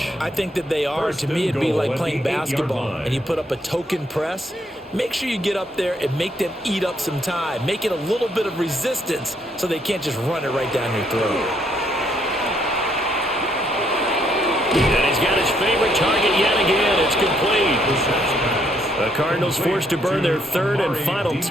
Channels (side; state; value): both; normal; correlation 0.72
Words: I think that they are. To me, it'd be like playing basketball, and you put up a token press. Make sure you get up there and make them eat up some time. Make it a little bit of resistance so they can't just run it right down your throat. And he's got his favorite target yet again. It's complete. The Cardinals forced to burn their 3rd and final